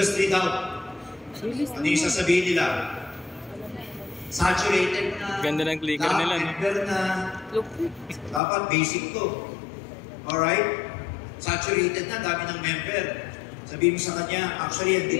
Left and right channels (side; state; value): right; drops out; at 8.4 s